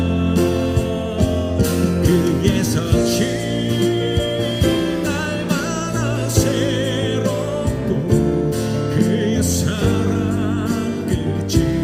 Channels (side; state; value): both; identical; correlation 1.00